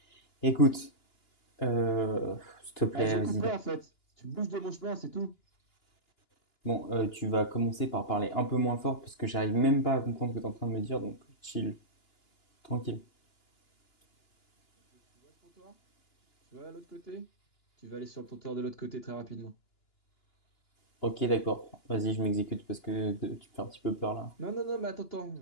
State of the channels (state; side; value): late; right; 2.9 ms